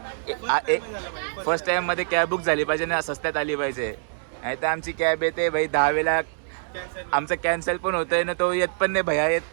फर्स्ट टाइम मध्ये कॅब बुक झाली पाहिजे ना. स्वस्तात आली पाहिजे. नाही तर आमची कॅब येते भाई 10 वेळा. आमचं कॅन्सल पण होतंय ना. तो येत पण नाही भैया. येत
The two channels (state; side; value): silent; left; digital silence